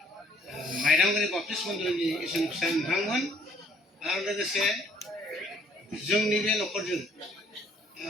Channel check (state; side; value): normal; both; correlation 0.63